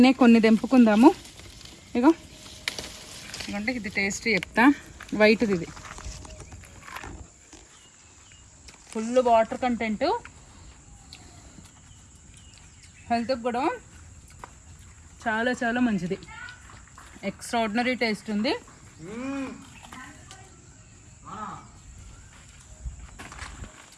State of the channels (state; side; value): identical; both; correlation 1.00